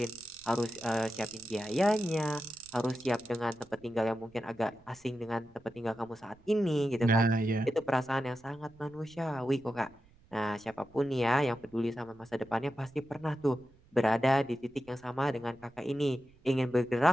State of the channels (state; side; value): noise; right; rumble, 28 dB below the sound